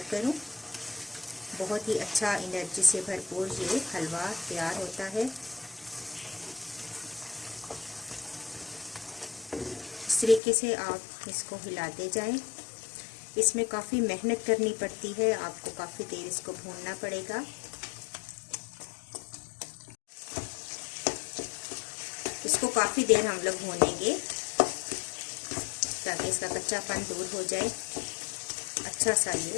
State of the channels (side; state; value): right; drops out; at 10.4 s